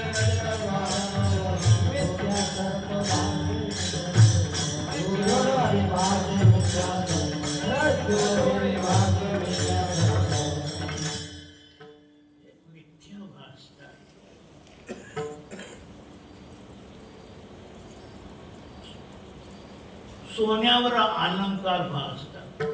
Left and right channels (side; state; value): both; identical; correlation 1.00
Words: सोन्यावर अलंकार भासतात.